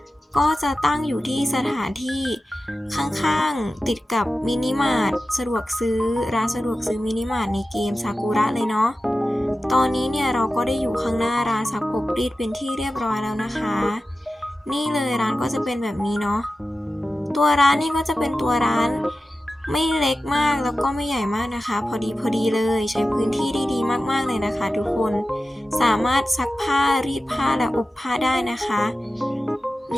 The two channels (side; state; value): both; normal; correlation 0.94